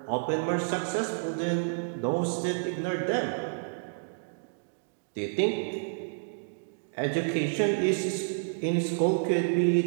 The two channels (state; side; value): silent; left; digital silence